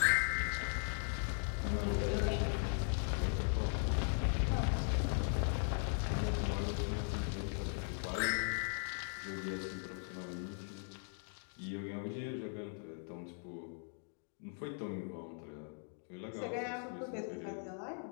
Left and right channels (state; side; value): silent; right; 52 dB below the other